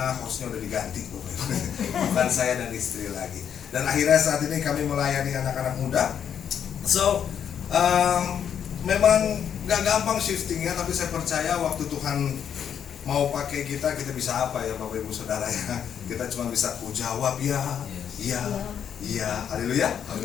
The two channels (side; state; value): right; quieter; 8.5 dB